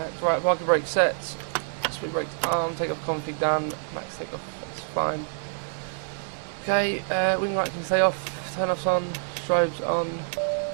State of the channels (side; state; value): left; silent; 60 dB below the other